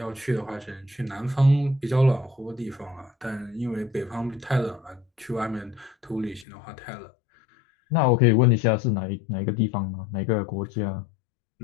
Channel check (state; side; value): drops out; right; at 6.5 s